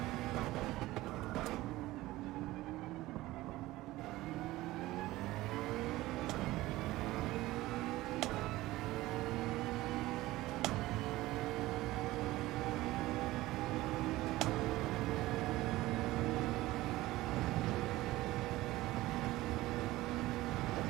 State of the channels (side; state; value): left; quieter; 17.7 dB